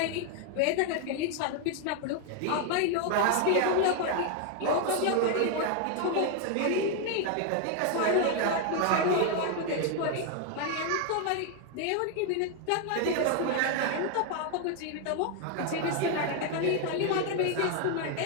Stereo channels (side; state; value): both; different; correlation 0.00